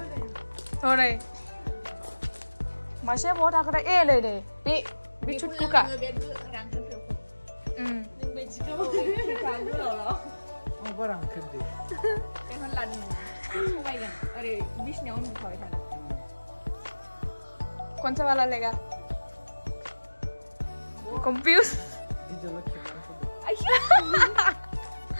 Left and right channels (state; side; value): inverted; both; correlation -1.00